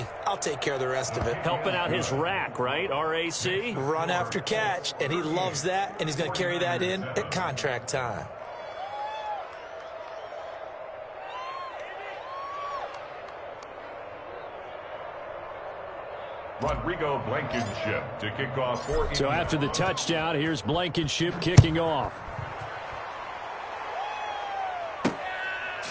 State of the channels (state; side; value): identical; both; correlation 1.00